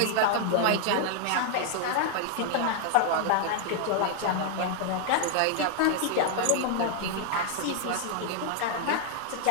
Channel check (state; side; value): different; both; correlation 0.00